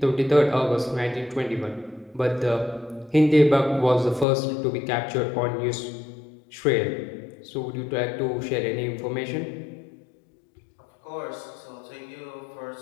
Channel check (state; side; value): drops out; right; at 4.2 s